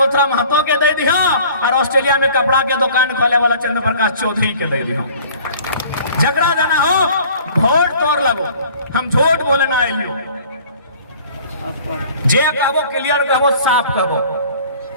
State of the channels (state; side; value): inverted; both; correlation -0.49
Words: महतो के दे दी हो, और ऑस्ट्रेलिया में कपड़ा के दुकान खोले वाला चंद्र प्रकाश चौधरी के दे दी हो। झगड़ा देना हो वोट तोड़ लगो, हम झूठ बोले ना आइलियो। जे कहबो क्लियर कहबो, साफ कहबो।